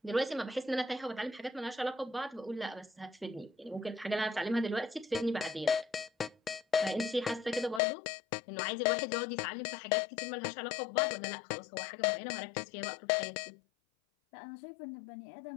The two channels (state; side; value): drops out; right; at 7.8 s